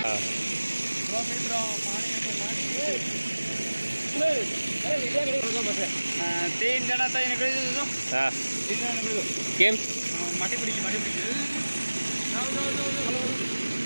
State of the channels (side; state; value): both; inverted; correlation -1.00